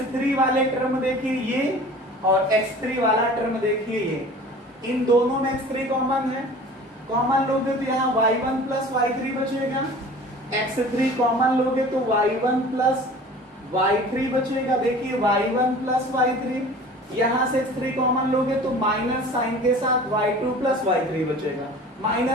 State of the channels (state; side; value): normal; both; correlation 0.43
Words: वाले टर्म देखिए ये, और x3 वाला टर्म देखिए ये, इन दोनों में x3 कॉमन है। कॉमन लोगे तो यहाँ y1 प्लस y3 बचेगा, x3 कॉमन लोगे तो y1 प्लस y3 बचेगा। देखिए y1 प्लस y3, यहाँ से x3 कॉमन लोगे तो माइनस साइन के साथ y2 प्लस y3 बचेगा।